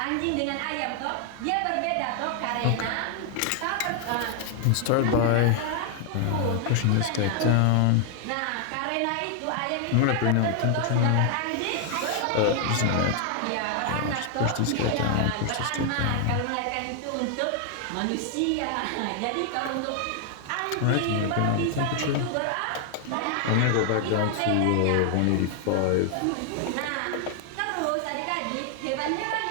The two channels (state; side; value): different; both; correlation 0.00